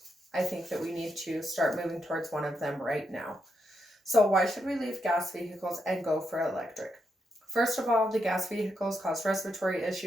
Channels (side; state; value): both; normal; correlation 0.82